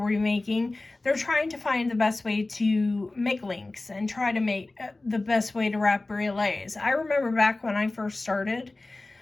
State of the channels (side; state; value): right; quieter; 3.0 dB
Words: making, they're trying to find the best way to make links and try to make the best way to wrap brioles. I remember back when I first started,